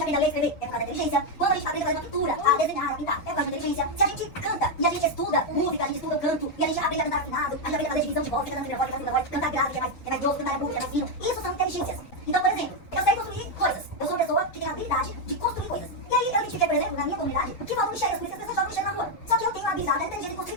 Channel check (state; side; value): late; right; 7.5 ms